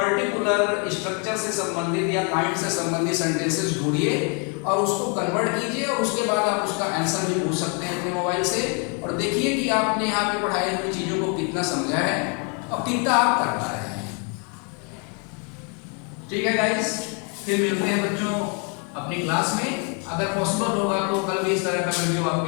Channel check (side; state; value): right; quieter; 37.0 dB